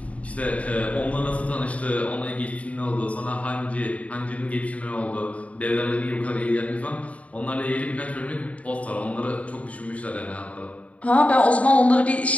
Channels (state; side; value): late; right; 0.067 ms